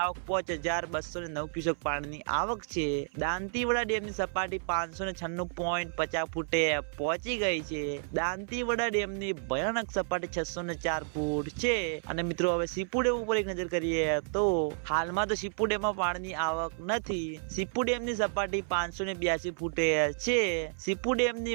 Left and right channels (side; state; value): left; silent; 57 dB below the other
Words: 5209 ક્યુસેક પાણીની આવક છે। દાંતીવાડા ડેમની સપાટી 596.50 ફૂટે પહોંચી ગઈ છે। દાંતીવાડા ડેમની ભયાનક સપાટી 604 ફૂટ છે। અને મિત્રો હવે સીપુ ડેમ ઉપર એક નજર કરીએ તો હાલમાં તો સીપુ ડેમમાં પાણીની આવક નથી। સીપુ ડેમની સપાટી 582 ફૂટે છે। સીપુ